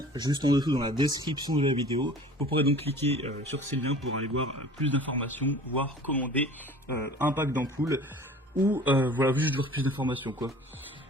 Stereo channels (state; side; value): normal; both; correlation 0.45